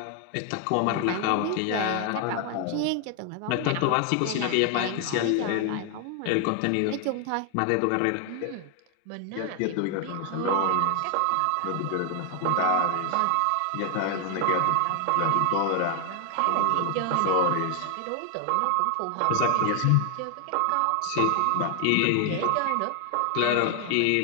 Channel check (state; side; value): different; both; correlation 0.00